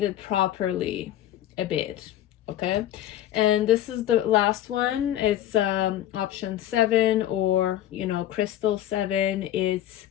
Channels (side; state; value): right; quieter; 12.6 dB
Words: properly a bit. Okay, and this is the last one. It's option 7, or you know, crystal 7. It's